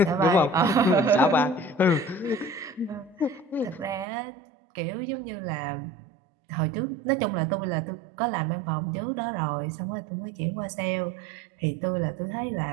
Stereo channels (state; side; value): drops out; left; at 4.0 s